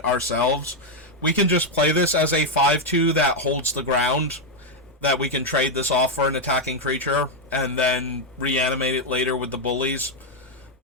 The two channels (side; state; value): both; normal; correlation 0.01